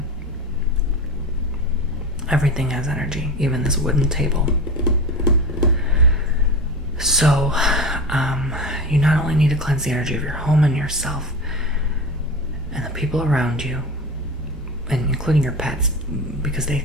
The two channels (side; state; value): both; normal; correlation 0.28